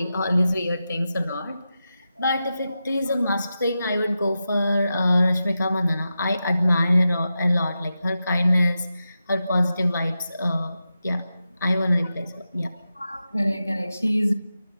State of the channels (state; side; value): inverted; both; correlation -0.90